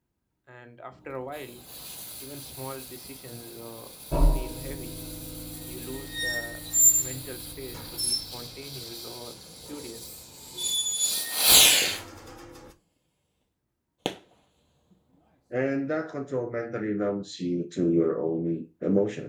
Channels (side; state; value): both; identical; correlation 1.00